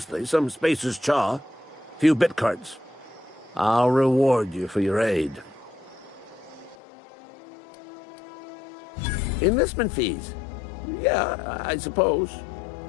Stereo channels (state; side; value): drops out; right; at 6.8 s